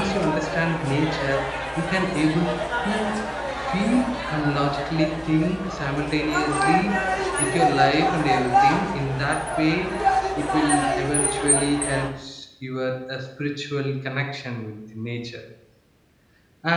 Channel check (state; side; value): identical; both; correlation 1.00